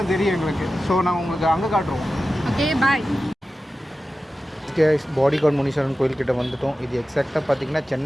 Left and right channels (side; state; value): both; normal; correlation 0.94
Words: தெரியும் எங்களுக்கு. ஸோ நாங்கள் உங்களுக்கு அங்கே காட்டுறோம். ஓகே, பாய். ஓகே, பாடிகார்ட் முனீஸ்வரன் கோயில்கிட்ட வந்துட்டோம். இது எக்ஸாக்டாக பார்த்தீங்கன்னா